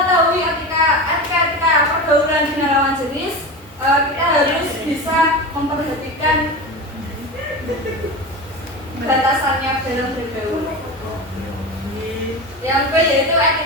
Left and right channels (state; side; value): normal; both; correlation 0.26